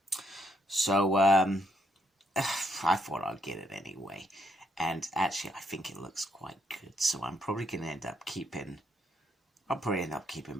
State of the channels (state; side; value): normal; both; correlation 0.75